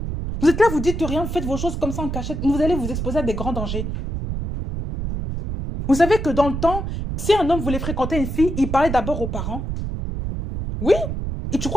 Vous êtes là, vous dites rien, vous faites vos choses comme ça en cachette. Vous allez vous exposer à des grands dangers. Vous savez que dans le temps, si un homme voulait fréquenter une fille, il parlait d'abord aux parents. Oui. Et tu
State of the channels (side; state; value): right; noise; rumble, 4 dB below the sound